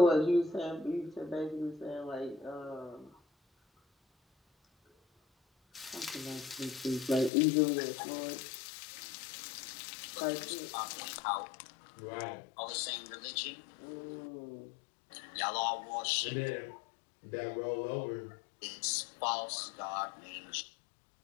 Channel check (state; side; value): drops out; right; at 7.3 s